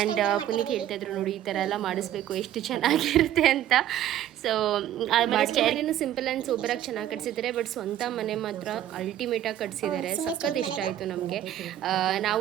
ಪುನೀತ್ ಹೇಳ್ತಾ ಇದ್ರು ನೋಡಿ ಈ ಥರ ಎಲ್ಲ ಮಾಡಿಸ್ಬೇಕು ಎಷ್ಟು ಚೆನ್ನಾಗಿರುತ್ತೆ ಅಂತ. ಸೊ ಆಮೇಲೆ ಸ್ಟೇರಿನೂ ಸಿಂಪಲ್ ಆ್ಯಂಡ್ ಸೂಪರಾಗಿ ಚೆನ್ನಾಗಿ ಕಟ್ಸಿದ್ದಾರೆ. ಬಟ್ ಸ್ವಂತ ಮನೆ ಮಾತ್ರ ಅಲ್ಟಿಮೇಟಾಗಿ ಕಟ್ಸಿದ್ದಾರೆ, ಸಖತ್ ಇಷ್ಟ ಆಯಿತು ನಮಗೆ.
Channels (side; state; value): left; quieter; 11.9 dB